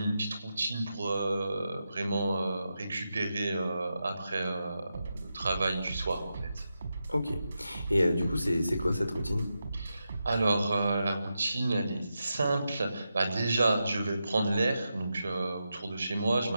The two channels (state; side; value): inverted; both; correlation -0.88